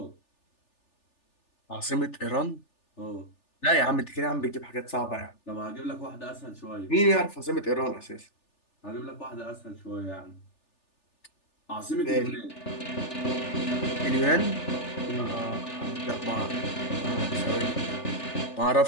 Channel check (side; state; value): right; late; 3.4 ms